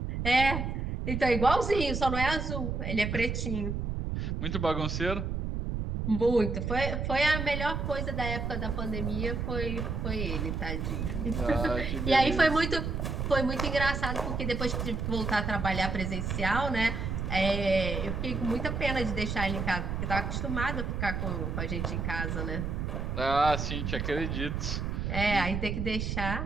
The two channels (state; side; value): noise; right; rumble, 2 dB below the sound